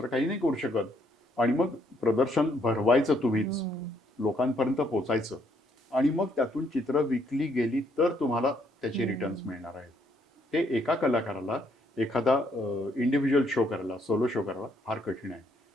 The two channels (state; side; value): normal; both; correlation 0.70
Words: काही नाही करू शकत आणि मग प्रदर्शन भरवायचं तुम्हीच, लोकांपर्यंत पोचायचं आणि मग त्यातून चित्र विकली गेली तर तुम्हाला त्याचे रिटर्न्स मिळणार आहेत. ते एका कलाकाराला एखादा इंडिव्हिज्युअल शो करायला, सोलो शो करायला फार कठीण आहे.